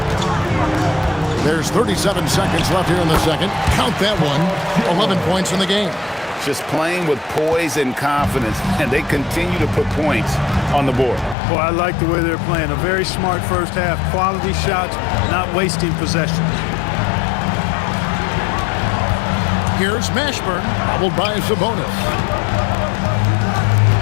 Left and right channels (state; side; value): drops out; right; at 11.4 s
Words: There's 37 seconds left here in the second. Count that one. 11 points in the game. Just playing with poise and confidence, and they continue to put points on the board. Boy, I like the way they're playing. A very smart first half. Quality shots, not wasting possession. Here's Mashburn, followed by Sabonis.